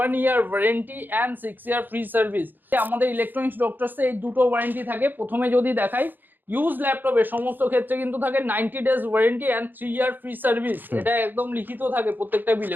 1 year warranty and 6 year free service আমাদের ইলেকট্রনিক্স ডক্টরসে এই দুটো ওয়ারেন্টি থাকে। প্রথমে যদি দেখাই ইউজ ল্যাপটপের সমস্ত ক্ষেত্রে কিন্তু থাকে 90 days warranty and 3 year free service, এটা একদম লিখিত থাকে প্রত্যেকটা বিলে,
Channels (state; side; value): late; left; 0.090 ms